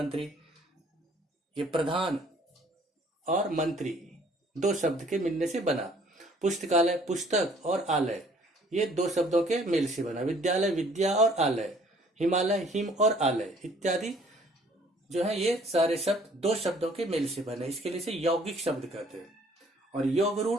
ये प्रधान और मंत्री 2 शब्द के मिलने से बना। पुस्तकालय, पुस्तक और आलय ये 2 शब्दों के मेल से बना। विद्यालय, विद्या और आलय, हिमालय, हिम और आलय इत्यादि जो है ये सारे शब्द 2 शब्दों के मेल से बने। इसके लिए से यौगिक शब्द कहते हैं। और योग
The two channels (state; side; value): normal; both; correlation 0.58